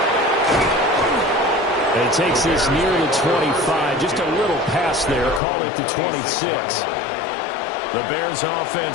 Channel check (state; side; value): drops out; right; at 5.4 s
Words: And it takes this near the 25, just a little past there, call it the 26. The Bears